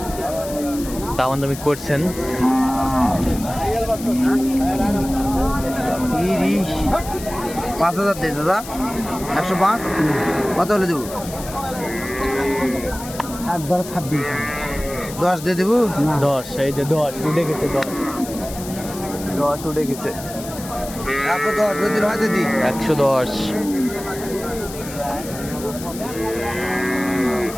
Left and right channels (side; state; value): left; noise; hiss, 13 dB below the sound